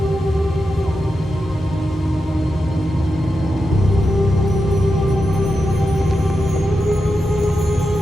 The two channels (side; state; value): both; normal; correlation 0.88